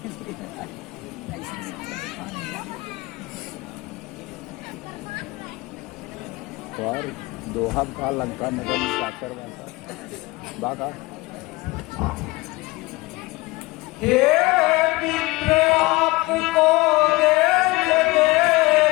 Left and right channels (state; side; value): quieter; right; 22.0 dB